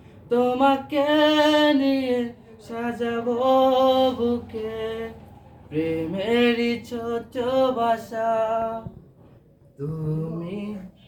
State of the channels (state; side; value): identical; both; correlation 1.00